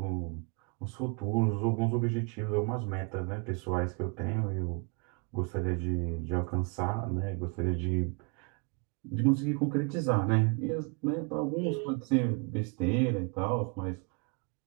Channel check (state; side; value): quieter; left; 32.5 dB